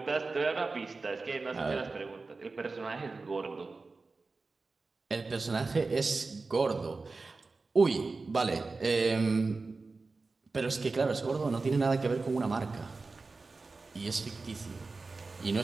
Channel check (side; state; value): left; quieter; 3.9 dB